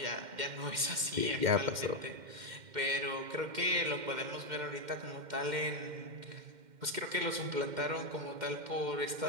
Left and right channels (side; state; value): left; late; 2.1 ms